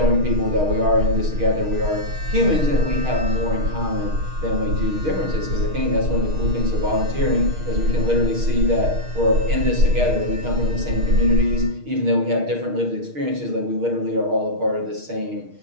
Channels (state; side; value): late; left; 6.4 ms